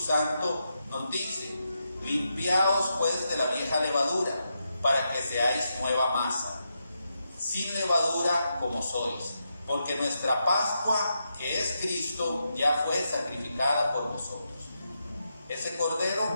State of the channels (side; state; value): both; inverted; correlation -0.85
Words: nos dice: limpiaos pues de la vieja levadura, para que seáis nueva masa, sin levadura como sois, porque nuestra Pascua, que es Cristo, ya fue sacrificada por nosotros. Ese